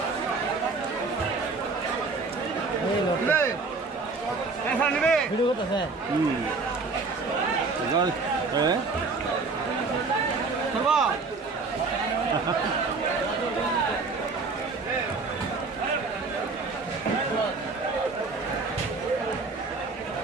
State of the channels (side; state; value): left; quieter; 4.1 dB